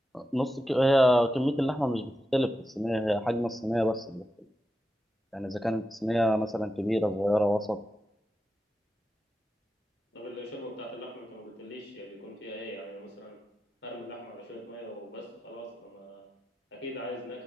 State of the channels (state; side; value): normal; both; correlation 0.89